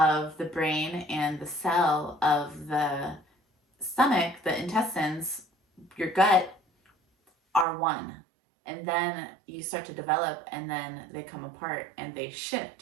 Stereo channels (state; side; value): drops out; left; at 7.7 s